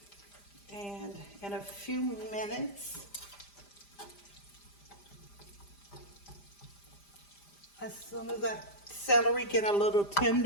And in a few minutes, as soon as that celery get a little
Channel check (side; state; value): right; late; 5.0 ms